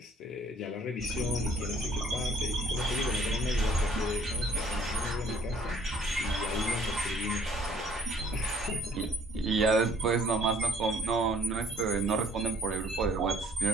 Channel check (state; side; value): normal; both; correlation 0.59